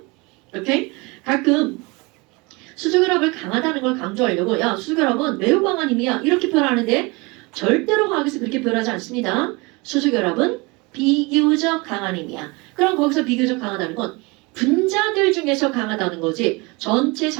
오케이? 가끔 수소결합을 강하다는 걸 강조하려고 야 수소결합은 매우 강한 힘이야 이렇게 표현하는데 절대로 화학에서 그렇게 표현하지 않습니다. 수소결합은 비교적 강한 힘이야. 그럼 거기서 비교적 강하다는 건 분자들 중에서 강하다는 거지 전체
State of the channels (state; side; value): quieter; left; 25.9 dB